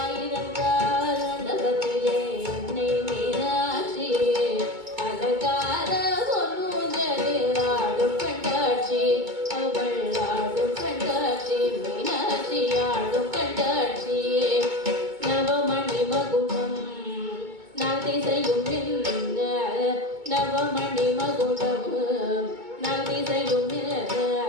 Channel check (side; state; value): left; late; 2.2 ms